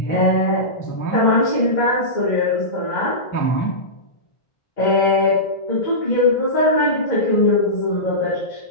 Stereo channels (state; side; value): late; right; 1.6 ms